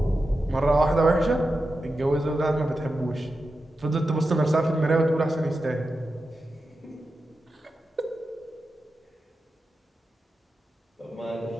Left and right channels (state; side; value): normal; both; correlation 0.90